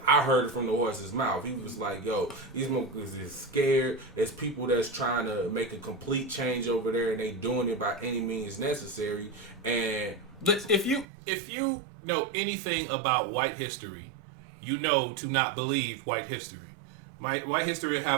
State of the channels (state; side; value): drops out; left; at 11.1 s